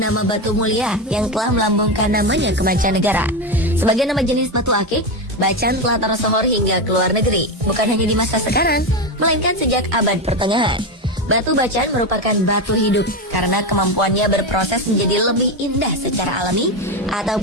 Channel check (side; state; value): both; normal; correlation 0.14